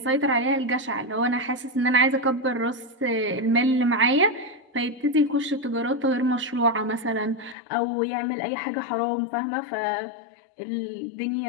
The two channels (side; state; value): right; drops out; at 7.6 s